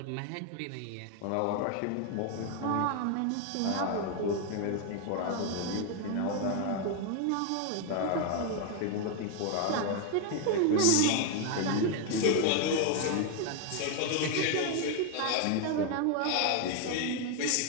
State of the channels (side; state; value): both; different; correlation 0.01